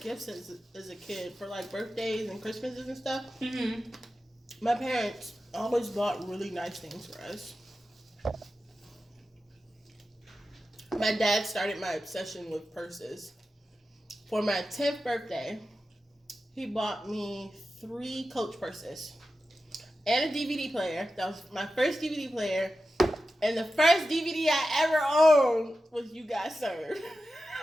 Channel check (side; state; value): both; normal; correlation 0.92